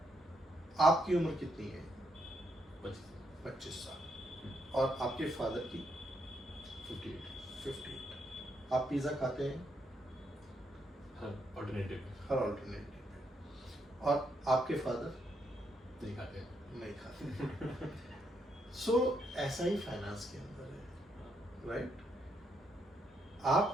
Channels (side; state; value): both; normal; correlation 0.77